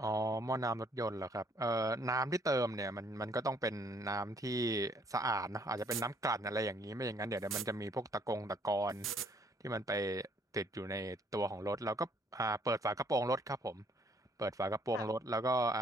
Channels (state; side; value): normal; both; correlation 0.64